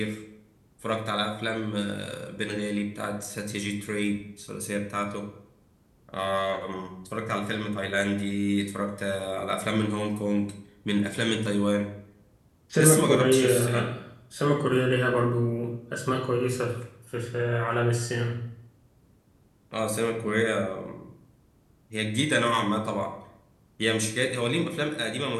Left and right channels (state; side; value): identical; both; correlation 1.00